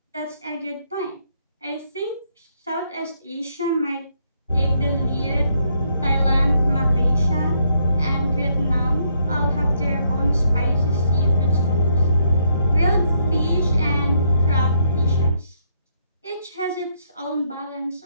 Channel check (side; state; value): both; inverted; correlation -0.72